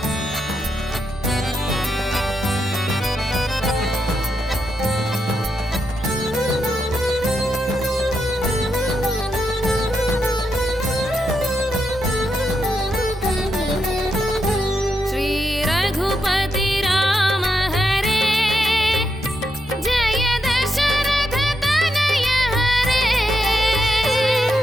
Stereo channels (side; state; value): both; normal; correlation 0.83